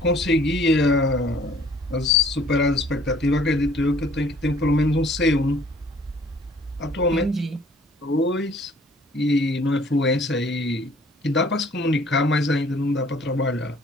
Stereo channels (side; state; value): both; normal; correlation 0.56